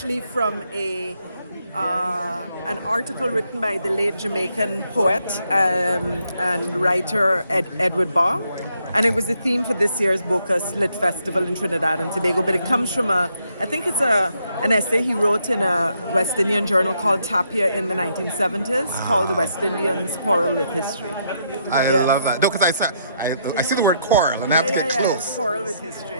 from an article written by the late Jamaican poet and writer Edward Barr. And it was the theme for this year's Bocas Lit Festival in Trinidad and Tobago. But it comes from I think it's an essay he wrote in a West Indian journal called Tapia in the 1970s called The West Indians Quarrel with History. I love that. No, because I see the word quarrel and I have to get close. Quarrel with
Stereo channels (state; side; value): inverted; both; correlation -0.75